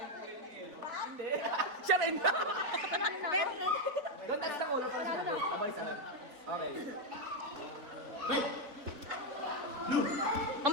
Siya rin. Doon tayo sa ulo para sinabi. Abay sa okay. Wait! Blue! Ang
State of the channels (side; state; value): left; late; 4.0 ms